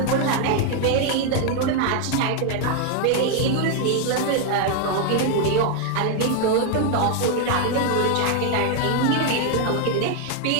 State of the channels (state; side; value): different; both; correlation 0.00